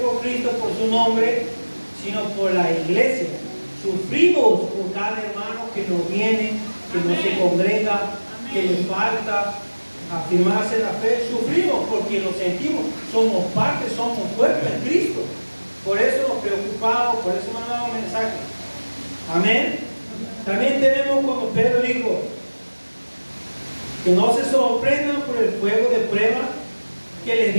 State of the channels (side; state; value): both; inverted; correlation -1.00